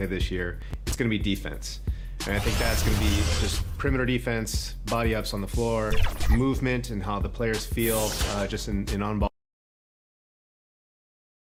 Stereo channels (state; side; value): identical; both; correlation 1.00